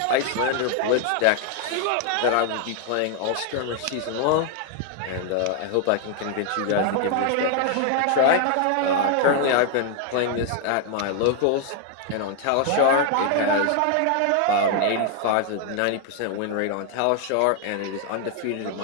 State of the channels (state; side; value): different; both; correlation 0.00